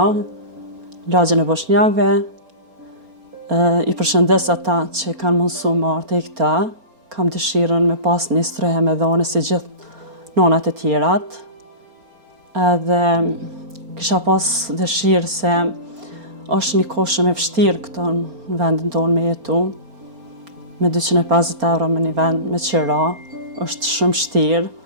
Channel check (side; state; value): left; late; 4.3 ms